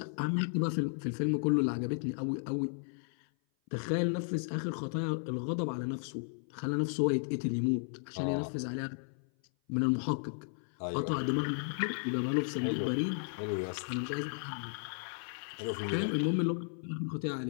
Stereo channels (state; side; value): silent; right; 55 dB below the other